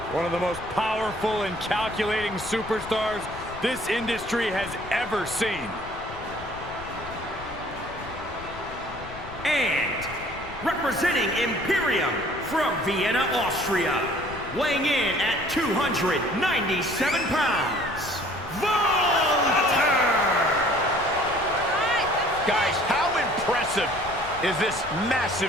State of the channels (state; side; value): noise; left; rumble, 15 dB below the sound